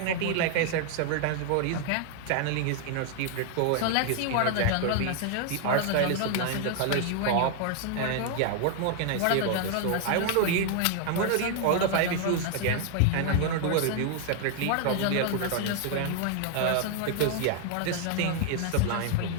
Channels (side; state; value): both; different; correlation 0.00